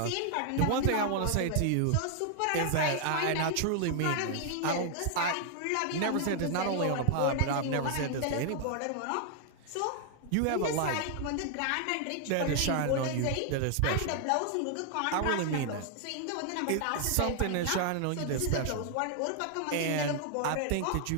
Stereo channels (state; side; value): different; both; correlation 0.00